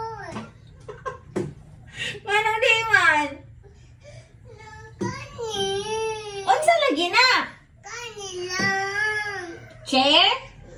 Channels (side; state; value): both; identical; correlation 1.00